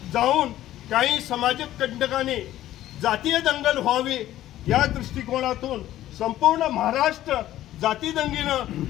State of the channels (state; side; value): quieter; right; 13.7 dB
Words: जाऊन काही समाजिक कंटकांनी जातीय दंगल व्हावी या दृष्टिकोनातून संपूर्ण महाराष्ट्र जाती दंगीनं